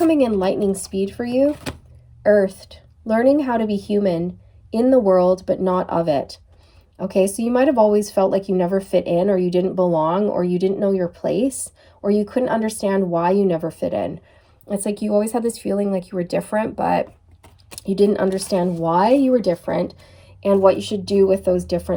in lightning speed for you. Earthed. Learning how to be human in the world, but not of it. Okay, so you might have always felt like you never fit in, or you didn't belong, or you didn't know your place, or you couldn't understand why you never fit in. It's like you always had this feeling like you were different, but you didn't understand why you were different and what you should do with those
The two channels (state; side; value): identical; both; correlation 1.00